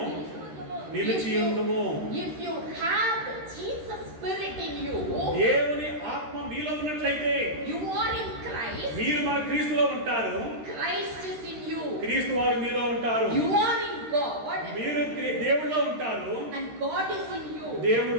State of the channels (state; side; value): late; left; 13 ms